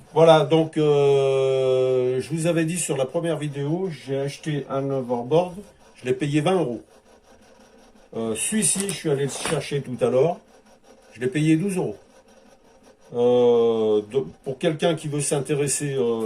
Voilà, donc je vous avais dit sur la première vidéo, j'ai acheté un overboard, je l'ai payé 20 euros. Celui-ci, je suis allé le chercher tout à l'heure, je l'ai payé 12 euros. Pour quelqu'un qui veut s'intéresser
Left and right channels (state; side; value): identical; both; correlation 1.00